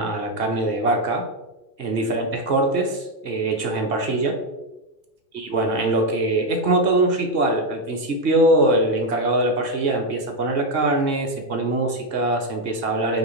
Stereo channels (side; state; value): right; late; 1.8 ms